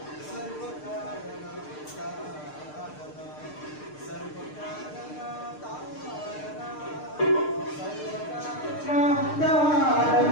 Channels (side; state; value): right; late; 6.6 ms